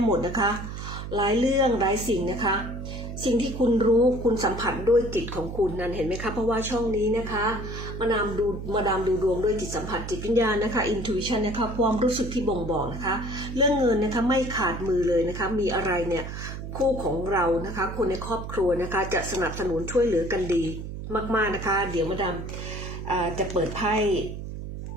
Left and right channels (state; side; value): noise; right; hum, 8 dB below the sound